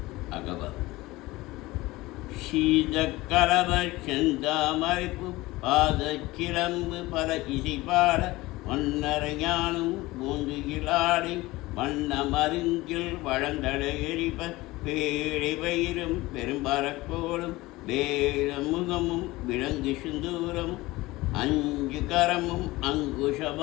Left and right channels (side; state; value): right; quieter; 19.8 dB